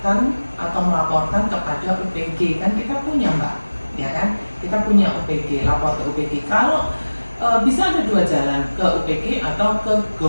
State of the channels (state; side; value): inverted; both; correlation -1.00